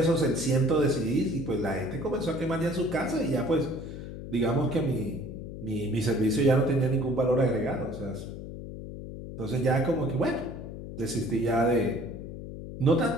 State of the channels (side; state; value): left; noise; hum, 10 dB below the sound